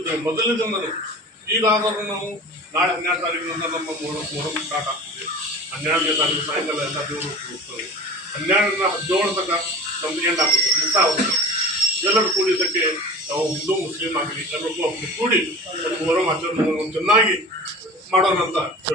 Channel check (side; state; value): both; normal; correlation 0.36